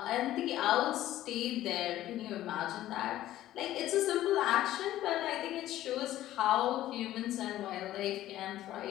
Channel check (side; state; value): right; quieter; 14.0 dB